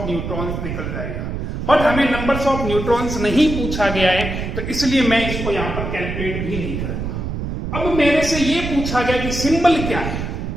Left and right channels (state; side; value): noise; right; rumble, 4 dB below the sound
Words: न्यूट्रॉन्स निकल जाएगा। बट हमें नंबर्स ऑफ न्यूट्रॉन्स नहीं पूछा गया है, तो इसलिए मैं इसको यहां पर कैलकुलेट भी नहीं करूंगा। अब मेरे से ये पूछा गया कि सिंबल क्या है,